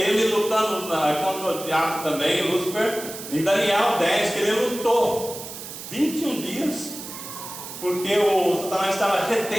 lutando contra o diabo também, Lúcifer, em Daniel 10, que ele lutou 21 dias, porque o Satanás estava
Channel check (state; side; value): noise; right; hiss, 11 dB below the sound